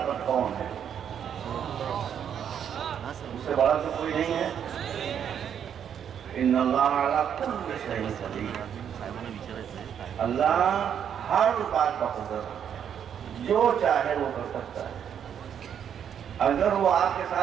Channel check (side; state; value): left; quieter; 8.6 dB